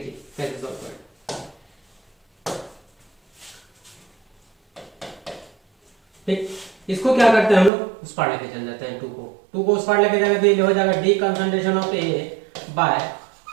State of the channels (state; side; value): drops out; left; at 7.7 s